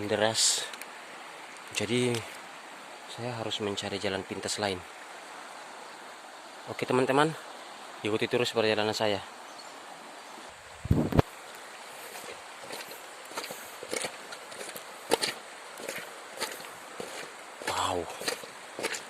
deras. Jadi saya harus mencari jalan pintas lain. Oke teman-teman, ikuti terus perjalanan saya. Wow,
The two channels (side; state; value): both; identical; correlation 1.00